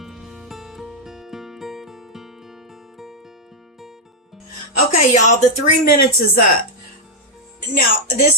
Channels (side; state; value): both; normal; correlation -0.03